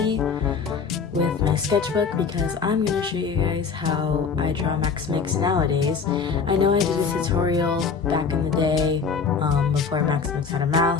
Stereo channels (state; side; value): quieter; right; 5.6 dB